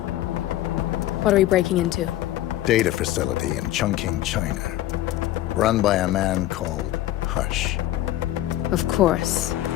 what are we breaking into? Data facility in Chongqing, China. Run by a man called Hush. Of course.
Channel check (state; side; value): quieter; right; 14.5 dB